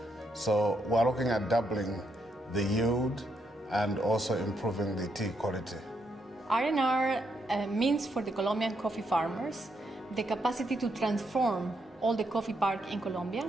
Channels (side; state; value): both; normal; correlation 0.78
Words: So we're looking at doubling the yield and also improving the tea quality. R&R means for the Colombian coffee farmers the capacity to transform all the coffee park in Colombia,